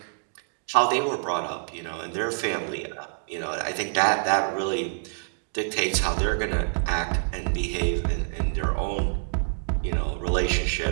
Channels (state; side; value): silent; left; digital silence